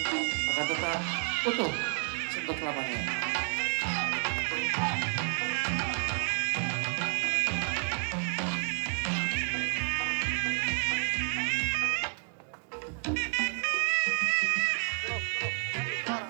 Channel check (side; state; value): left; quieter; 38.5 dB